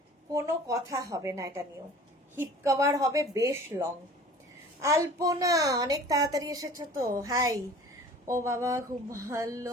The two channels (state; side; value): normal; both; correlation 0.45